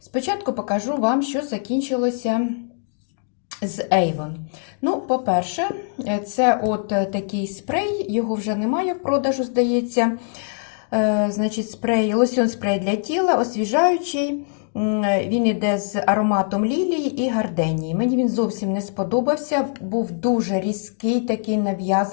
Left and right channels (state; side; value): silent; right; 63 dB below the other